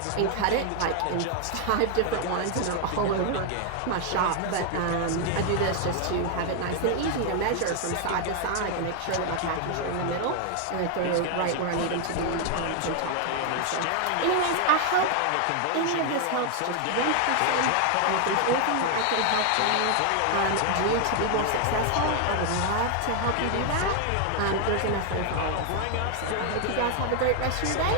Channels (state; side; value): different; both; correlation 0.00